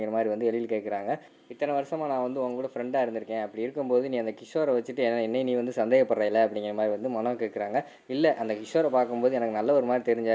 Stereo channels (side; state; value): both; identical; correlation 1.00